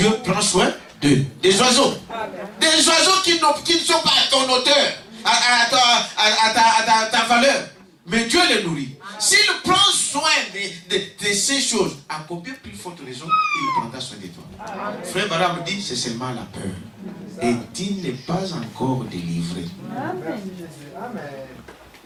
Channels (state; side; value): identical; both; correlation 1.00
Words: prend soin d'eux. Des oiseaux. Des oiseaux qui ne sont pas à ton hauteur, à ta valeur. Mais Dieu les nourrit. S'il prend soin de ces choses, à combien plus forte raison il prendra soin de toi? Frère Baram dit, c'est seulement la peur. Et tu n'es pas encore délivré.